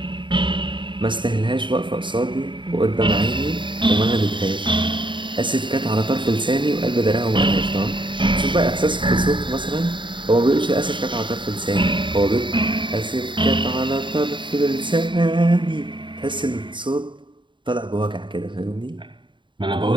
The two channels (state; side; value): late; left; 0.23 ms